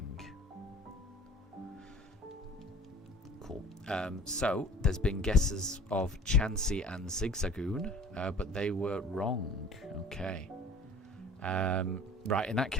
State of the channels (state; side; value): normal; both; correlation 0.46